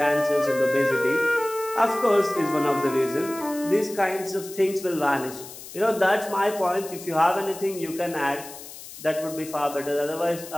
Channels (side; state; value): left; noise; hiss, 14 dB below the sound